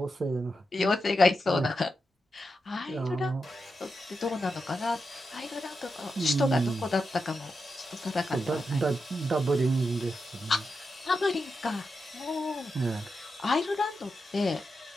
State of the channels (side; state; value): both; normal; correlation 0.88